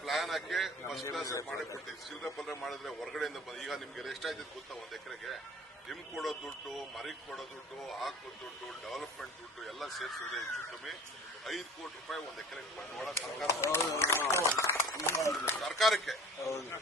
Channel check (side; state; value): both; normal; correlation 0.44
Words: ಪ್ಲಾನ್ ಹಾಕಿ ಫಸ್ಟ್ ಕ್ಲಾಸ್ ಮಾಡಿ ಕೊಡ್ತೀವಿ. ಚಿಲ್ಲರೆ ಪಲ್ರೆ ಮಾಡಿದ್ರೆ ಹೊರಗಡೆಯಿಂದ ಈಗ ನಿಮ್ಗೆ ಎಷ್ಟಾಯ್ತದೆ ಗೊತ್ತಾ? 1 ಎಕರೆಗೆ ನಿಮ್ಗೆ ಕೊಡೋ ದುಡ್ಡು, ಮರಿಗೆ ಕೊಡೋ ದುಡ್ಡು, ಹಾಕೋ ದುಡ್ಡು, ಡೆವಲಪ್ಮೆಂಟ್ ದುಡ್ಡು ಎಲ್ಲ ಸೇರಿಸಿದ್ರೆ ಹೆಚ್ಚು ಕಮ್ಮಿ 5 ಕೋಟಿ ರೂಪಾಯಿ 1 ಎಕರೆಗೆ ಬಂಡವಾಳ ಸರ್ಕಾರಕ್ಕೆ